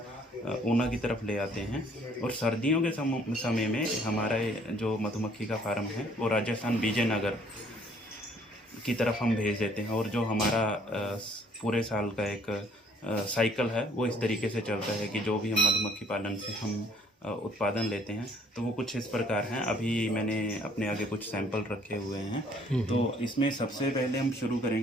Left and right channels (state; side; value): normal; both; correlation 0.61